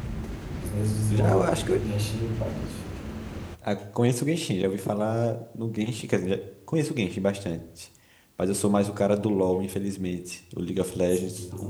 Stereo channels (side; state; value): both; identical; correlation 1.00